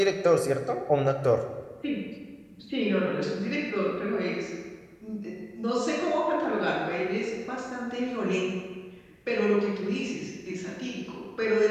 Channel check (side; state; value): both; identical; correlation 1.00